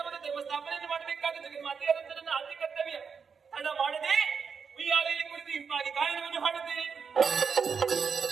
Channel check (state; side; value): quieter; left; 6.1 dB